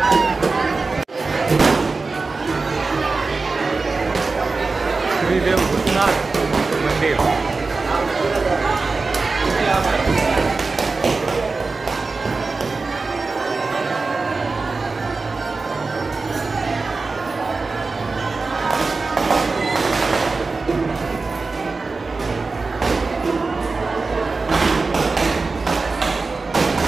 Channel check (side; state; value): left; quieter; 4.0 dB